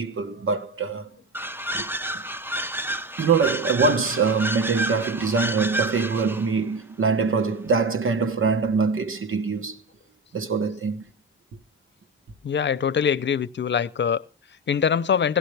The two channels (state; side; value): normal; both; correlation 0.19